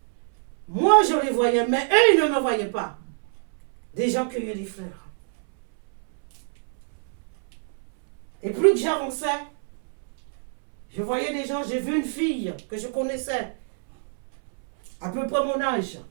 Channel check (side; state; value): left; silent; 61 dB below the other